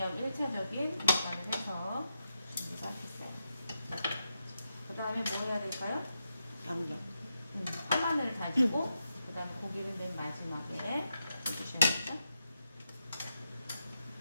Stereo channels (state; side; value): inverted; both; correlation -0.86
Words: 1차적인 간을 해서 준비가 됐어요. 그 다음에 뭐 해야 될까요? 양념. 파마늘을 다지고 그 다음에 고기를 맨 마지막에 해주셔야겠죠?